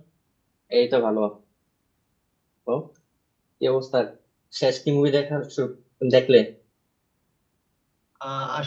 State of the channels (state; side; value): identical; both; correlation 1.00